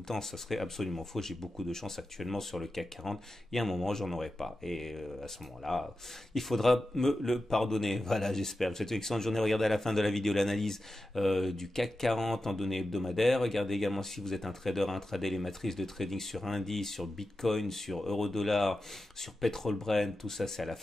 le temps. Ça serait absolument faux. J'ai beaucoup de chance actuellement sur le CAC 40. Il y a un moment, j'en aurai pas. Et à ce moment-là, il faudra me le pardonner. Voilà, j'espère. Je vous souhaite une excellente journée. Regardez à la fin de la vidéo l'analyse du CAC 40 en données hebdomadaires. Regardez également si vous êtes un trader, intraday, les matrices de trading sur indice, sur Bitcoin, sur euro-dollar, sur pétrole Brent. Tout ça, c'est à la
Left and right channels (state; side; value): normal; both; correlation 0.92